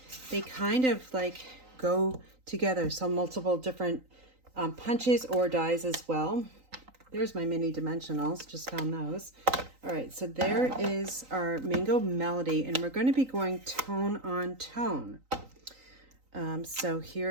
they kind of like go together, so multiple different punches or dies as well. There's my mini dimensionals, just found those. All right, so there is our Mango Melody, and we're going to be going tone on tone. So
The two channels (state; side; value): late; left; 3.9 ms